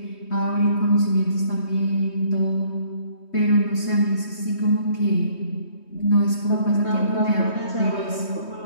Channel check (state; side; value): late; right; 3.2 ms